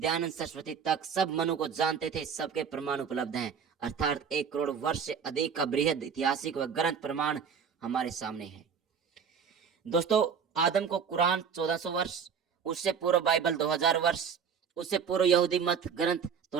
सरस्वती तक सब मनु को जानते थे। सबके प्रमाण उपलब्ध हैं, अर्थात 1 करोड़ वर्ष से अधिक का बृहद ऐतिहासिक व ग्रंथ प्रमाण हमारे सामने है। दोस्तों, आदम को कुरान 1400 वर्ष, उससे पूर्व बाइबल 2000 वर्ष, उससे पूर्व यहूदी मत ग्रंथ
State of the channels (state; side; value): quieter; left; 6.7 dB